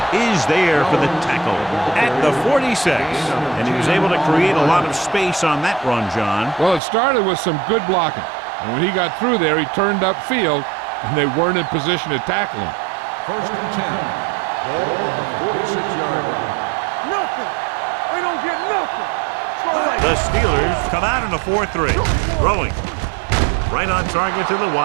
is there for the tackle at the 46. And he was able to create a lot of space on that run, John. Well, it started with some good blocking. And when he got through there, he turned upfield, and they weren't in position to tackle him. First and 10. Ball on the 46-yard line. Nothing. They don't get nothing. The Steelers come out in a 4-3. Throwing. Right on target to the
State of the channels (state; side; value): drops out; left; at 6.8 s